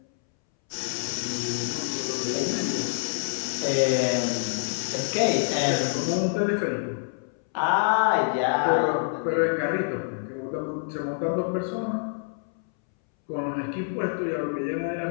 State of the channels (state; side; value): silent; right; 60 dB below the other